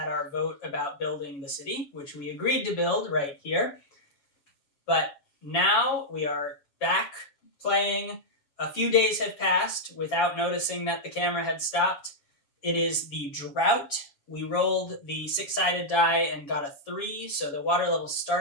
our vote about building the city, which we agreed to build right here. But now we are back playing. A few days have passed without noticing that the camera had stopped. It is the drought. We rolled the 6-sided die and got a 3, so the water level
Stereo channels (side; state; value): right; late; 7.2 ms